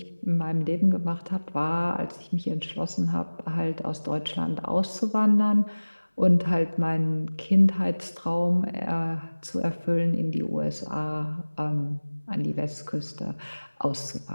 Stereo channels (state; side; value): inverted; both; correlation -1.00